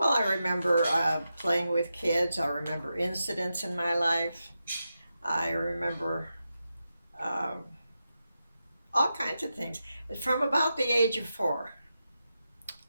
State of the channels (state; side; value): inverted; both; correlation -0.89